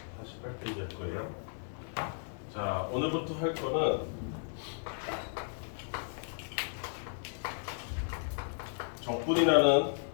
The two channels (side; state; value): right; silent; digital silence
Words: 48페이지 할 거예요. 자, 오늘부터 할 거는 적분이라는